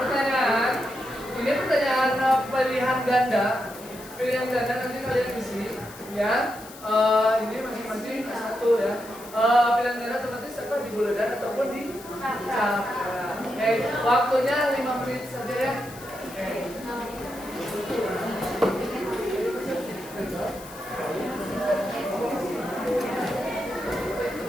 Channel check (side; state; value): left; noise; hiss, 18 dB below the sound